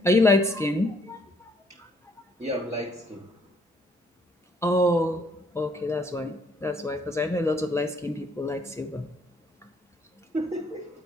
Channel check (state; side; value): normal; both; correlation 0.66